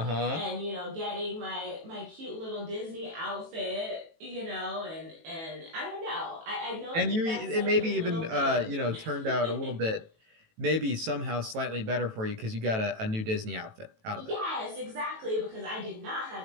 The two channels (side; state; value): left; late; 18 ms